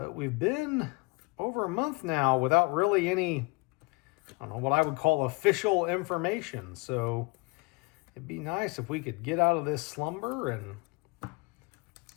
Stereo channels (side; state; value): right; quieter; 27.0 dB